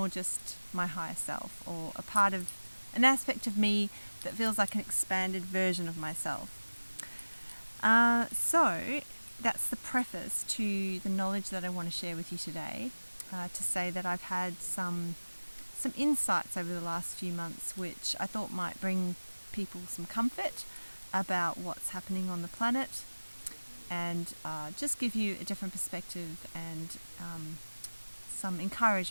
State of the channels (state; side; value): inverted; both; correlation -1.00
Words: just my higher self, or a part of an aspect of me that feels like an expanded version of myself. So that's the preface to the knowledge that I want to share with you today, to say that I've had some insights over the last few months which I thought might bring people some comfort about what's happening on the planet, and just give you a different perspective and some